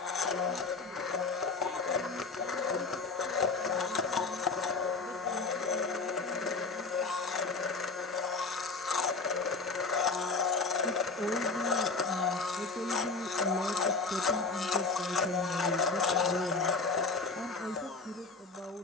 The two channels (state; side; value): quieter; right; 4.2 dB